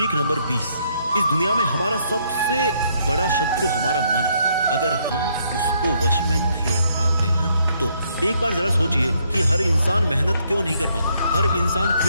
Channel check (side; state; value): both; inverted; correlation -0.71